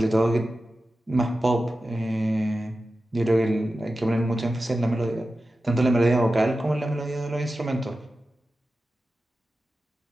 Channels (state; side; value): normal; both; correlation 0.93